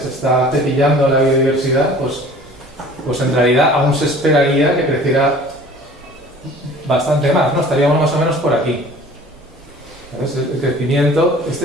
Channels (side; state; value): both; normal; correlation 0.47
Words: está cepillando la biodiversidad, pues en realidad aún se esperaría que creciera bastante más, ¿no? Estaríamos más o menos por aquí. ¿Sabes? El crecimiento,